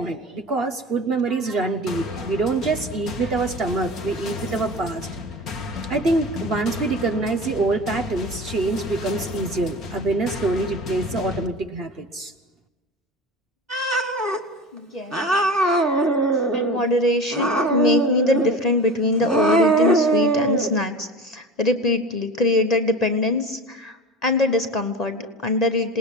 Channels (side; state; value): both; normal; correlation 0.33